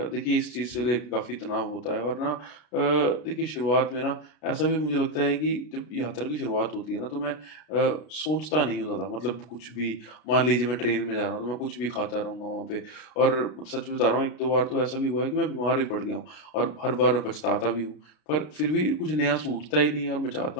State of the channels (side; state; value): right; late; 33 ms